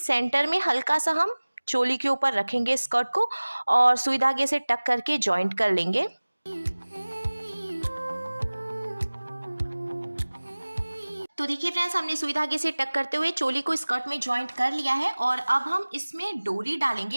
में हल्का सा हम चोली के ऊपर रखेंगे स्कर्ट को और सुई धागे से टक करके जॉइंट कर लेंगे। तो देखिए फ्रेंड्स, हमने सुई धागे से टक करते हुए चोली को स्कर्ट में जॉइंट कर लिया है और अब हम इसमें डोरी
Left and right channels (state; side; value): inverted; both; correlation -1.00